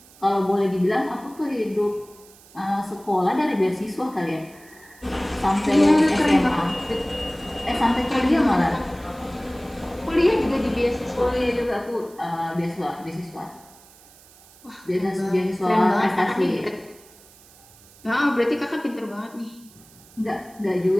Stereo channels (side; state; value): right; noise; hiss, 25 dB below the sound